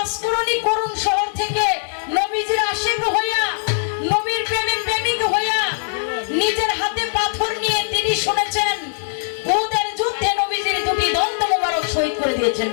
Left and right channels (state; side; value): silent; right; 65 dB below the other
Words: অস্করণী করুণ শহর থেকে নবীজির আশিক হইয়া, নবীর প্রেমে প্রেমিক হইয়া, নিজের হাতে পাথর নিয়ে তিনি শুনেছেন উহুদের যুদ্ধে নবীজির দুটি দন্ত মোবারক শহীদ করে দিয়েছেন